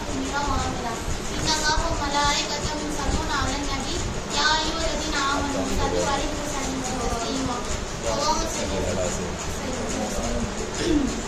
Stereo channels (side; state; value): both; identical; correlation 1.00